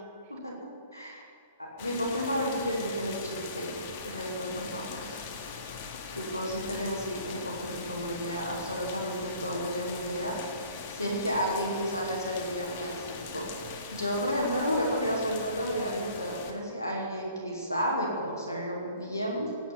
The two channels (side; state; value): both; inverted; correlation -0.53